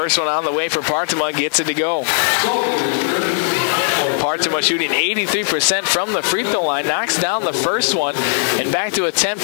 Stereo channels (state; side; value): silent; right; digital silence